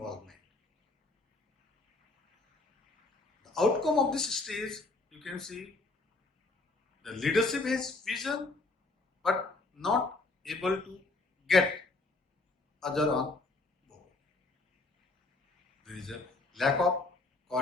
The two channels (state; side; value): quieter; right; 3.4 dB